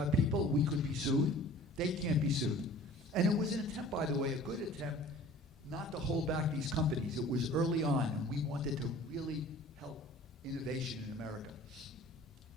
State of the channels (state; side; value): normal; both; correlation 0.46